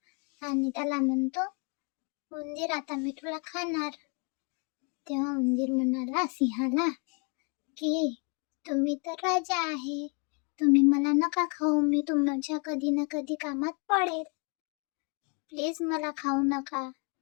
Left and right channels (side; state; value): right; quieter; 35.5 dB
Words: आणि त्याला म्हणतो, उंदीर आता मी तुला खाणार. तेव्हा उंदीर म्हणाला सिंहाला की तुम्ही तर राजा आहे, तुम्ही मला नका खाऊ, मी तुमच्या कधी ना कधी कामात पडेल, प्लीज मला खाऊ नका.